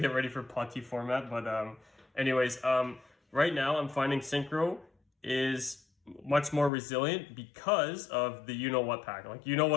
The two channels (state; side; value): drops out; right; at 6.7 s